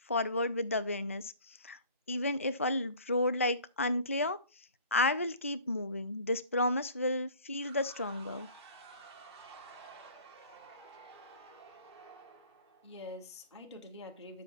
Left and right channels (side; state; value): both; inverted; correlation -0.47